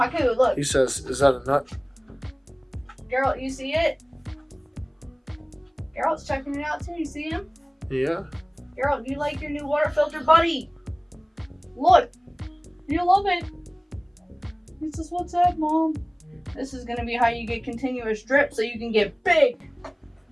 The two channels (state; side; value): identical; both; correlation 1.00